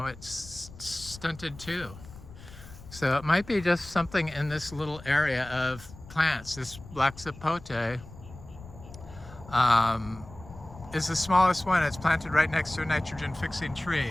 it's stunted too. So it might be just something in this little area of plants. This black zapote is the smallest one. It's planted right next to a nitrogen fixing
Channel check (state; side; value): noise; left; rumble, 17 dB below the sound